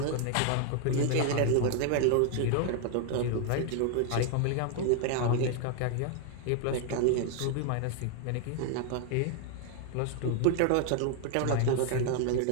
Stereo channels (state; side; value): different; both; correlation 0.00